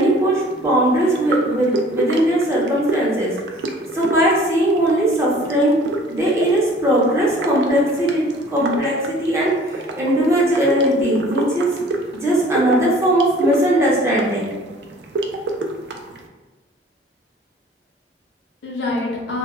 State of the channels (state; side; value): normal; both; correlation 0.50